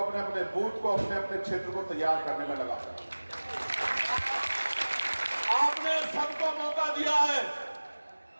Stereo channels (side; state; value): both; inverted; correlation -1.00